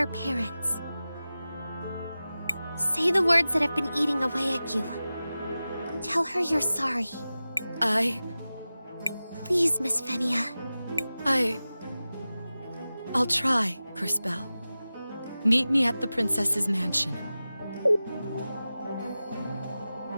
parents. Say the words that have been eating away at you. Tell her you're sorry. Please, Miss Fenia. I'll try, Crispell. Meet me at the princess's mansion.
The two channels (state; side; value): inverted; both; correlation -0.95